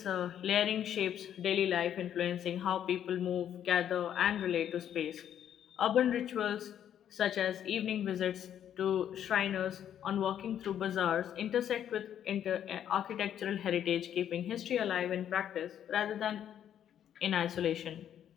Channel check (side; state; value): right; quieter; 9.9 dB